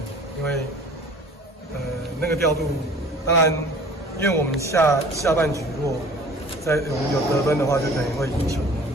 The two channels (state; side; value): normal; both; correlation 0.47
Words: 因为那个调度，当然，因为我们下半局如果我们有得分的话，就等于会赢球，